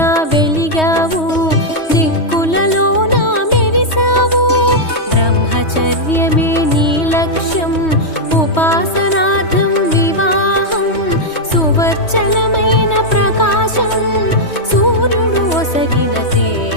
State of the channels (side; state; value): right; late; 3.2 ms